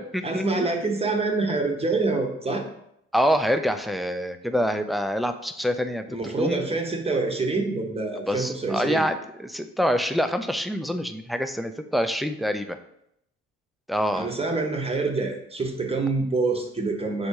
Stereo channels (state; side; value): normal; both; correlation 0.71